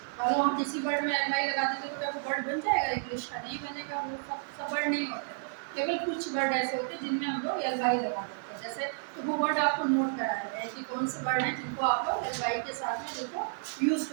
और हम किसी वर्ड में एल वाई लगा देते तो क्या वो वर्ड बन जाएगा इंग्लिश का? नहीं बनेगा, वो सब वर्ड नहीं होते, केवल कुछ वर्ड ऐसे होते हैं जिनमें हम लोग एल वाई लगा देते हैं। जैसे तो वो वर्ड आपको नोट करा देते हैं कि कौन से वर्ड हैं जिनको आप लोग एल वाई के साथ में जिनको यूज़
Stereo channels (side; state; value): left; silent; digital silence